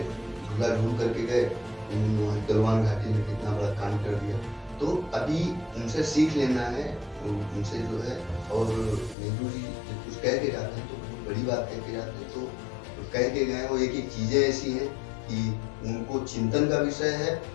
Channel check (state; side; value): drops out; right; at 9.2 s